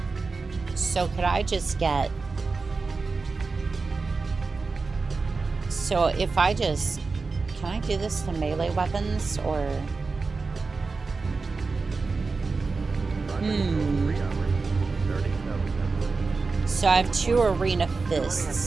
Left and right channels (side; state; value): left; quieter; 4.2 dB